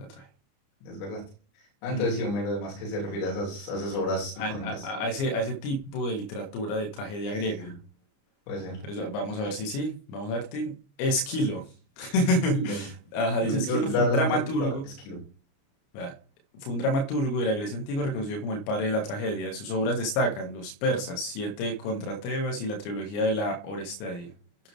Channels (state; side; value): late; right; 29 ms